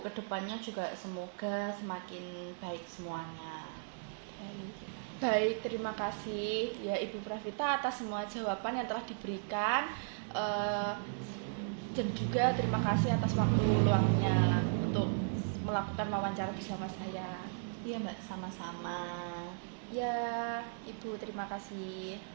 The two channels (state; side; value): silent; left; digital silence